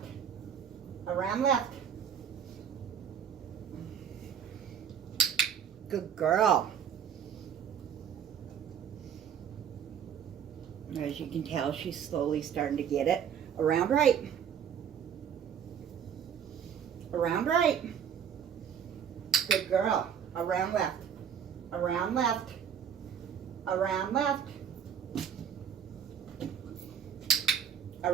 Around left. Good girl. As you can tell, she's slowly starting to get it. Around right. Around right. Good girl. Around left. Around left. Around left.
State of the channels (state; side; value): quieter; left; 8.2 dB